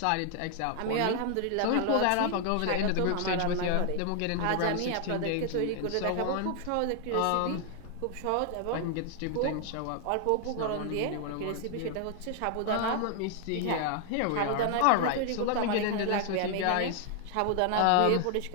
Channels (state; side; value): different; both; correlation 0.00